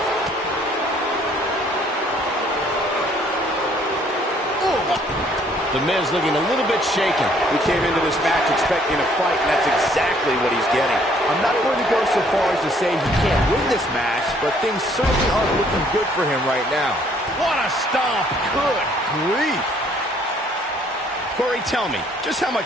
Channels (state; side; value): normal; both; correlation 0.63